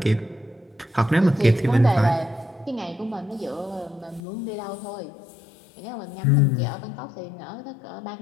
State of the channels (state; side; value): drops out; right; at 4.2 s